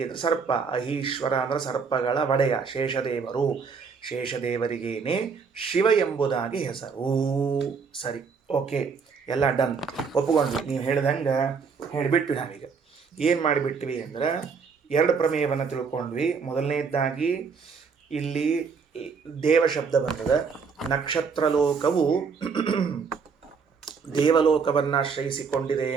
ಅಂದರೆ ಸರ್ಪ. ಅಹೀಶ್ವರ ಅಂದರೆ ಸರ್ಪಗಳ ಒಡೆಯ ಶೇಷದೇವರು. ಶೇಷದೇವರಿಗೇನೆ ಶಿವ ಎಂಬುದಾಗಿ ಹೆಸರು. ಸರಿ, ಓಕೆ, ಎಲ್ಲ ಡನ್, ಒಪ್ಪಿಕೊಂಡ್ವಿ. ನೀವು ಹೇಳ್ದಂಗೆ ಹೇಳಿಬಿಟ್ವಿ. ನಾವೀಗ ಏನು ಮಾಡಿಬಿಟ್ವಿ ಅಂದರೆ ಎರಡು ಪ್ರಮೇಯವನ್ನು ತಿಳ್ಕೊಂಡ್ವಿ. ಮೊದಲನೇದಾಗಿ ಇಲ್ಲಿ ದೇವ ಶಬ್ದ ಬರ್ತದೆ. ನಕ್ಷತ್ರ ಲೋಕವು ದೇವಲೋಕವನ್ನು ಆಶ್ರಯಿಸಿಕೊಂಡಿದೆ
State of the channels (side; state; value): left; quieter; 5.6 dB